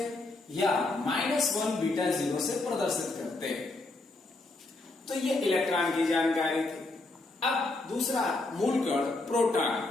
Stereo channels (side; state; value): right; quieter; 3.1 dB